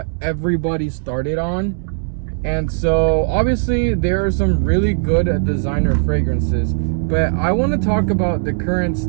everybody started on. And so obviously there are some really good designer fragrances, but I want to talk about the current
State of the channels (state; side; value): silent; left; 67 dB below the other